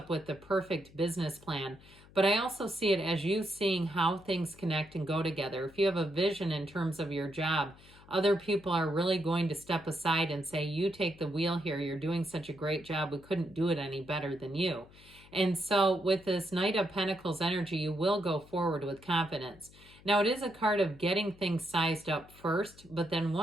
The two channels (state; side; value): noise; left; hum, 23 dB below the sound